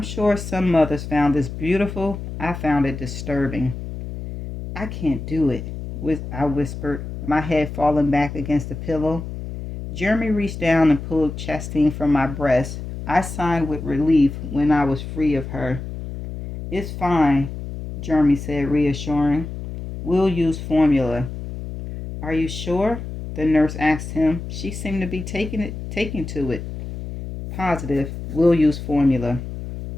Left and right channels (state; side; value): noise; left; hum, 8 dB below the sound